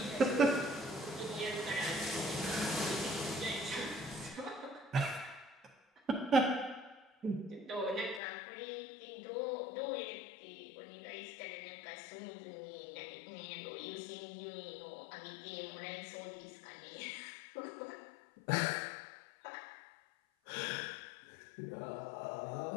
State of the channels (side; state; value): right; drops out; at 8.2 s